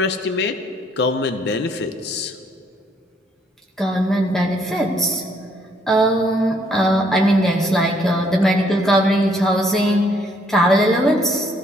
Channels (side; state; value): both; normal; correlation 0.67